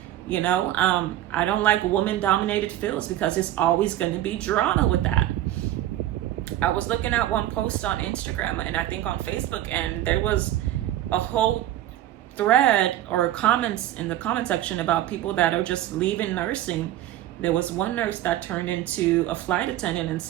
I don't like woman-dominated fields, because it's always going to be drama with that. I was looking at one post on Instagram and I think on Facebook, and there was a whole thread or comments in the comment section about people that are just leaving nursing. There was one nurse that turned into a flight attendant and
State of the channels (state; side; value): quieter; left; 13.4 dB